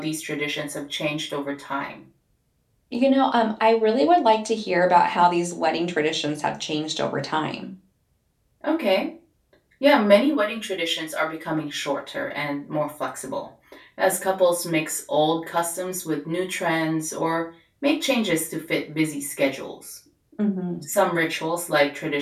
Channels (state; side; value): identical; both; correlation 1.00